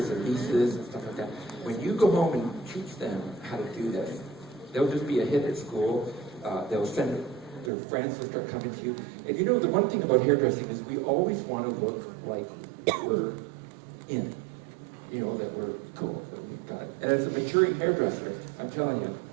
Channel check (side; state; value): left; drops out; at 7.7 s